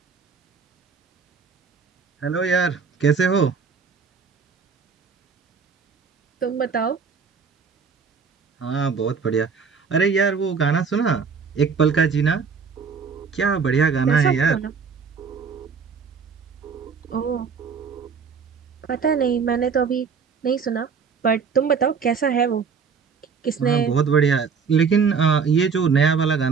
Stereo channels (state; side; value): quieter; left; 5.8 dB